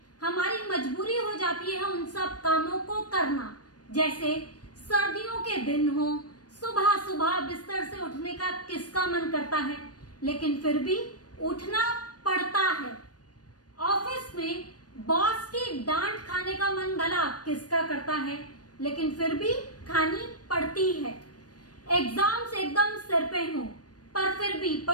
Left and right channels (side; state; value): right; late; 0.69 ms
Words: हमारी मजबूरी हो जाती है उन सब कामों को करना। जैसे सर्दियों के दिन हो, सुबह सुबह बिस्तर से उठने का किसका मन करता है, लेकिन फिर भी उठना पड़ता है। ऑफिस में बॉस की डांट खाने का मन भला किसका करता है, लेकिन फिर भी खानी पड़ती है। एग्जाम्स एकदम सिर पे हो, पर फिर भी